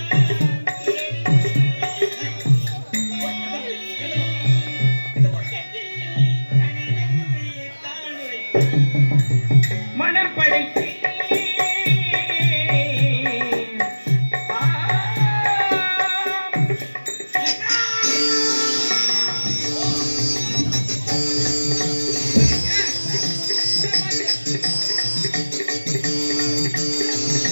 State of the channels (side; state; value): both; inverted; correlation -1.00